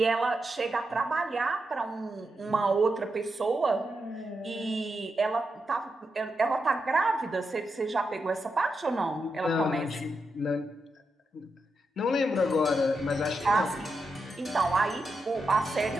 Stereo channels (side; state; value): both; normal; correlation 0.86